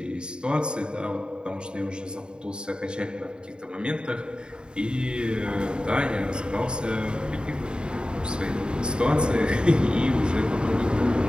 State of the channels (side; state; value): left; late; 0.050 ms